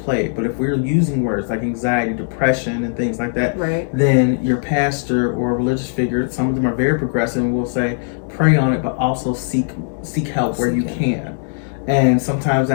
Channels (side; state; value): right; silent; digital silence